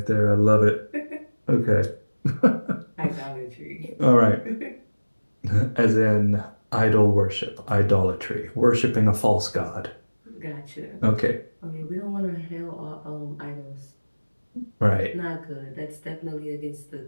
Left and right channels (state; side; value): inverted; both; correlation -1.00